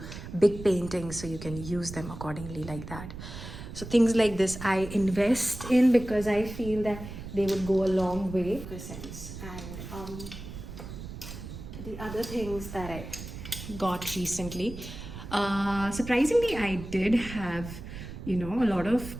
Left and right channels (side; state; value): right; noise; rumble, 11 dB below the sound